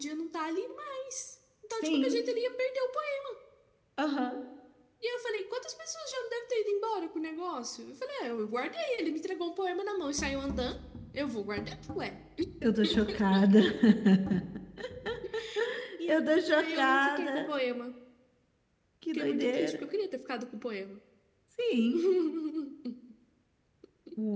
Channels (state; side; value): identical; both; correlation 1.00